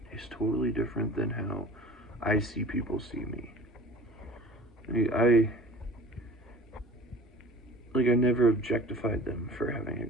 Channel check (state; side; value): normal; both; correlation 0.42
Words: is totally different than how I see people see me. I never objectified them for having a